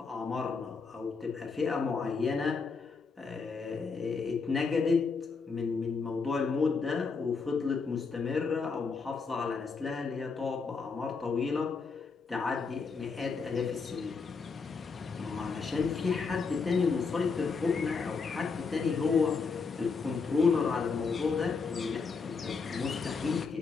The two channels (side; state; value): right; quieter; 4.9 dB